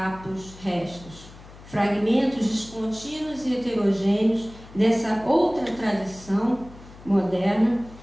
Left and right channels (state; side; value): noise; left; hum, 19 dB below the sound